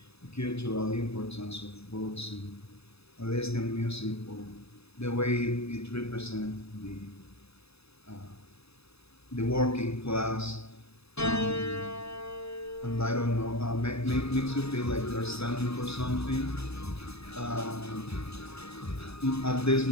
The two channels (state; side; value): late; right; 0.79 ms